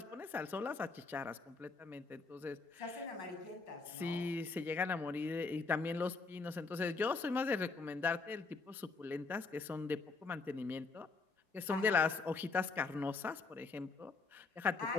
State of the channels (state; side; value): quieter; right; 4.1 dB